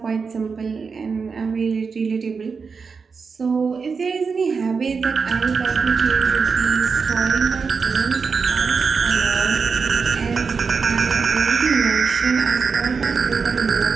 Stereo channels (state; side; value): quieter; left; 5.3 dB